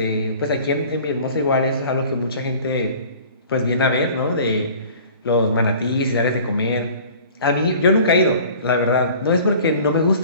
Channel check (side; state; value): both; inverted; correlation -0.47